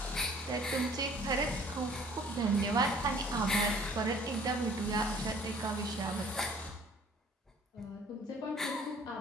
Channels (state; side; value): normal; both; correlation 0.53